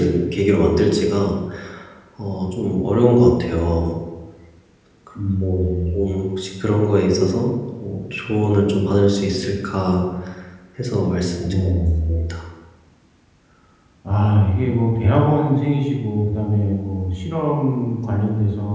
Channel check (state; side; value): identical; both; correlation 1.00